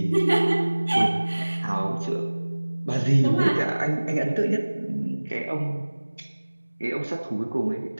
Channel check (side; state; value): both; inverted; correlation -1.00